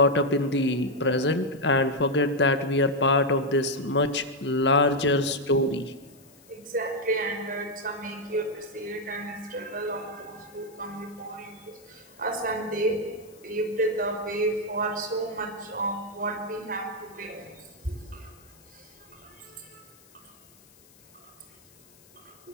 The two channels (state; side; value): noise; left; hiss, 27 dB below the sound